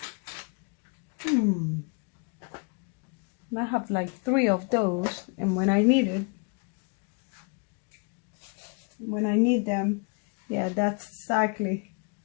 I have like 3 of those, and when I need them, yeah, that's exactly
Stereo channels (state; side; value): quieter; right; 34.7 dB